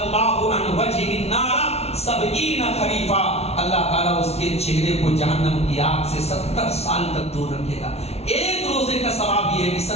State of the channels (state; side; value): late; right; 0.31 ms